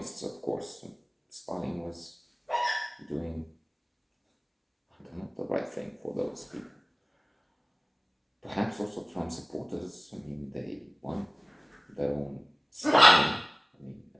of course. Stalin was doing, the right thing for those people. Perhaps also Trump supporters. I mean, they want their own Stalin I mean,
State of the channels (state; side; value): identical; both; correlation 1.00